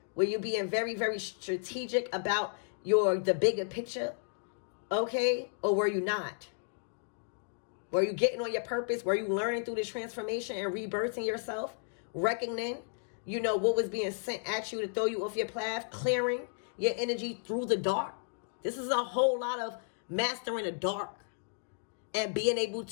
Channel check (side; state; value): right; silent; digital silence